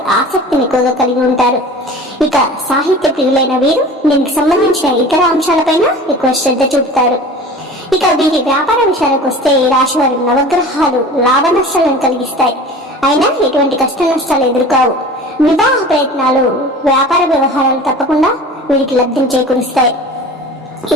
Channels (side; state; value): both; normal; correlation 0.39